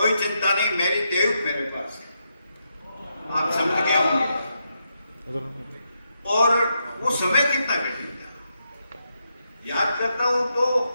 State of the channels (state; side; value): inverted; both; correlation -0.83